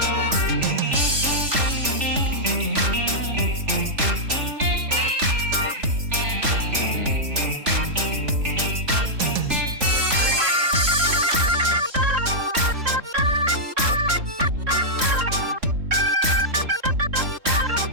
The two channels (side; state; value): left; late; 3.4 ms